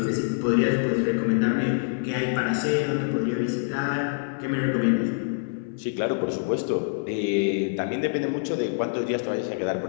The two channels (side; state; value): right; silent; 58 dB below the other